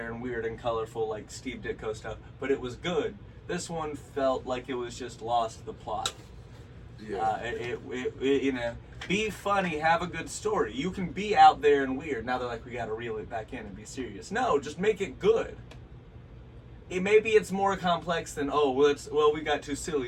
and weird and colorful like Steve Ditko stuff, but it was good. This one felt like it was just lost the plot. Yeah. It you know, be funny, have a good story. You can be out there and weird. Now they're like, we gotta reel it back in and be serious. No, just make it good. Maybe it's more complex than, we got too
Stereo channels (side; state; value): both; identical; correlation 1.00